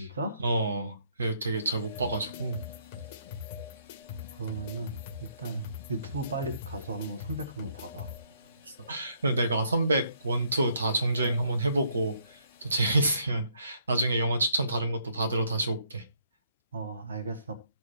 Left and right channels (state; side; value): inverted; both; correlation -0.68